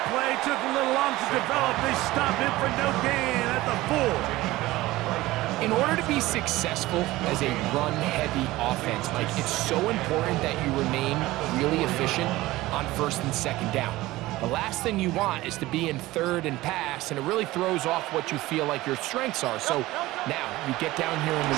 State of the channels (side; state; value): left; quieter; 18.1 dB